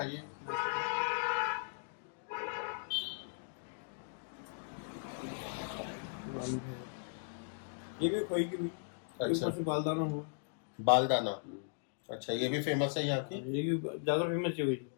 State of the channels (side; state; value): right; silent; digital silence